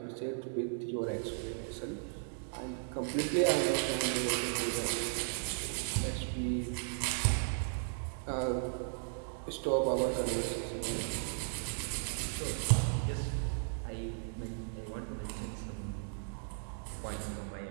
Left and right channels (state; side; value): silent; left; digital silence